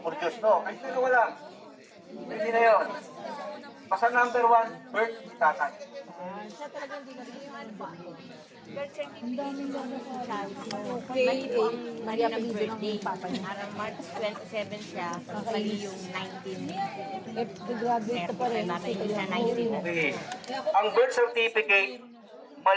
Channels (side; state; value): both; identical; correlation 1.00